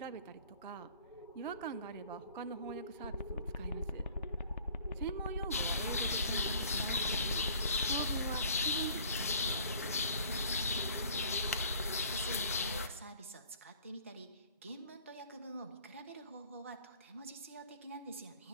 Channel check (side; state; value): both; inverted; correlation -0.52